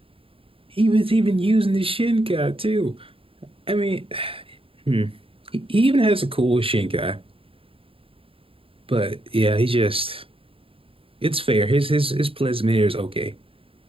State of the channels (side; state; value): left; late; 0.27 ms